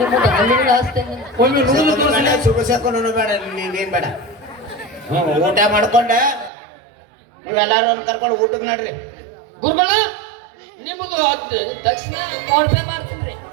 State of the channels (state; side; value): drops out; left; at 6.5 s